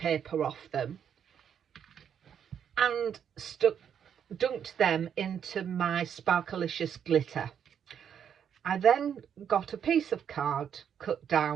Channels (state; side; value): quieter; left; 8.3 dB